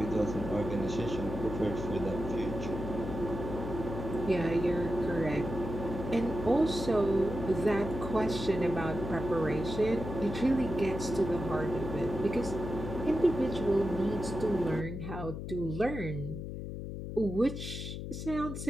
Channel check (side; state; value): left; noise; hum, 6 dB below the sound